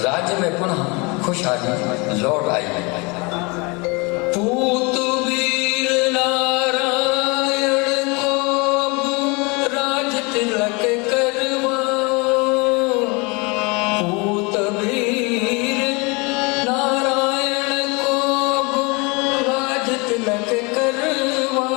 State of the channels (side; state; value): right; quieter; 28.5 dB